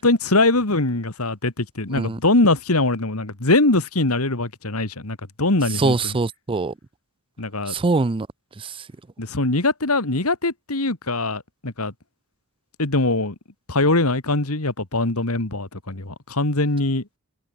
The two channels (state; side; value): normal; both; correlation 0.07